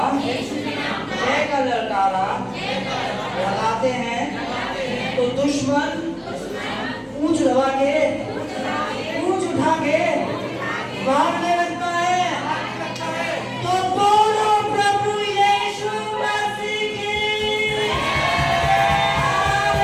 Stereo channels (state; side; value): identical; both; correlation 1.00